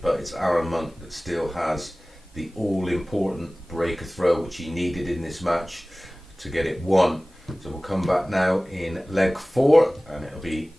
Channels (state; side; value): normal; both; correlation 0.98